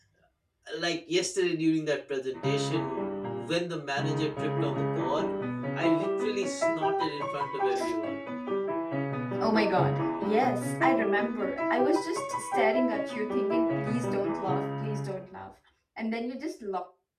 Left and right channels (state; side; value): identical; both; correlation 1.00